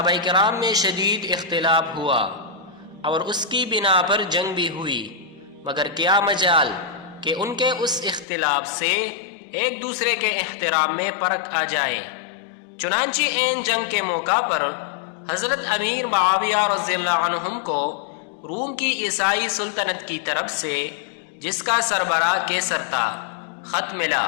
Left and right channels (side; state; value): right; drops out; at 8.2 s